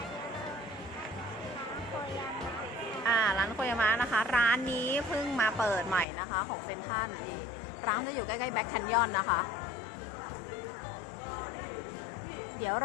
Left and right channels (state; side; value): drops out; right; at 6.1 s